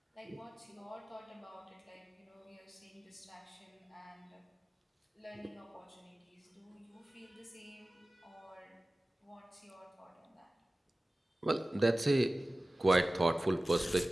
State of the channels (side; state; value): both; normal; correlation 0.97